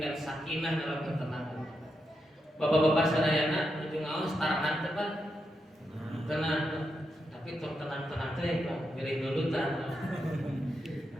sakinah dalam ketenangan. Bapak-bapak sadayana ujung awas tarangan teh Pak. Tenang. Tapi tenang-tenang teh Pak, milih nudutan.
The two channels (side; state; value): both; normal; correlation 0.85